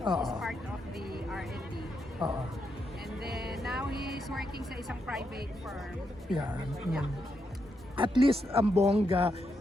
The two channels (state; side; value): normal; both; correlation 0.81